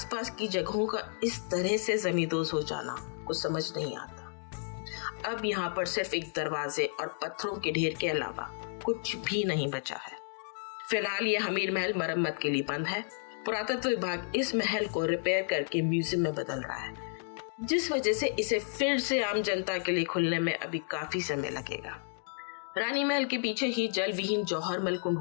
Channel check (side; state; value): right; silent; digital silence